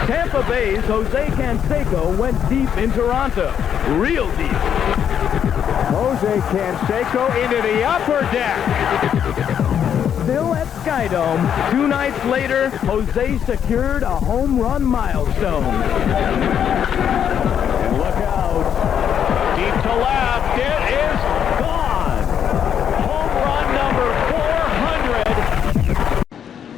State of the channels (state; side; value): quieter; right; 8.7 dB